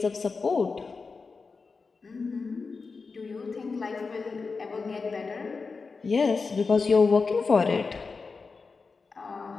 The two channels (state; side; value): quieter; right; 4.5 dB